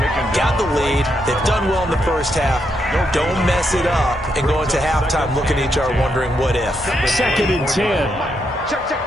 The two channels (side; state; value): both; normal; correlation 0.80